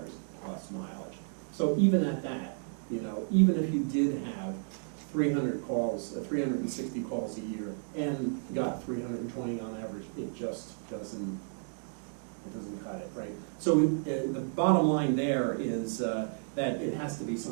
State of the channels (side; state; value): left; silent; digital silence